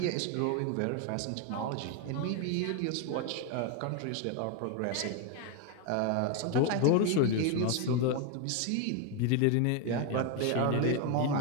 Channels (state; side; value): different; both; correlation 0.01